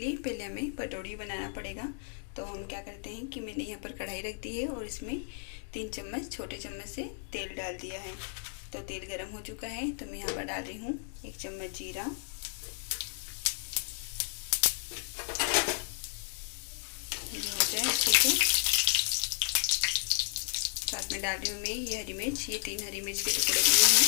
पहले हमें पटौड़ी बनाना पड़ेगा। तो हम क्या करते हैं कि मैंने यहाँ पर कढ़ाई रख दी है और इसमें 3 चम्मच छोटे चम्मच से तेल डाल दिया है। तो तेल गर्म हो चुका है, तो मैं यहाँ पर डाल रही हूँ 1 चम्मच जीरा, ये हो जाए अच्छे से। साथ में डाल रही हूँ मैं ये हरी मिर्च, ये 3 हरी मिर्च के टुकड़े दिए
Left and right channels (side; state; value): right; silent; digital silence